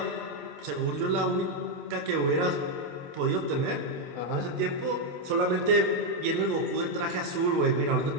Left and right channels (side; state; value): left; late; 28 ms